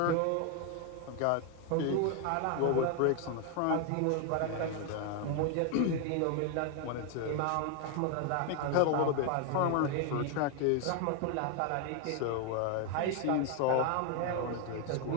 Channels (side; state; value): both; different; correlation 0.01